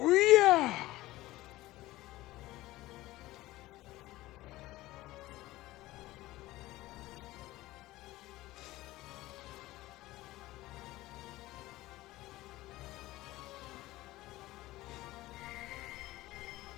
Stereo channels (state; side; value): quieter; right; 17.5 dB